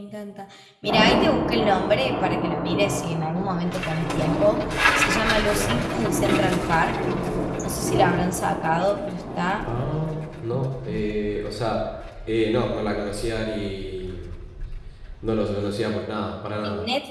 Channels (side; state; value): both; identical; correlation 1.00